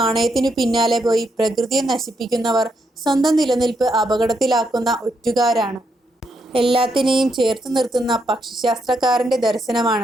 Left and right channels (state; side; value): normal; both; correlation 0.79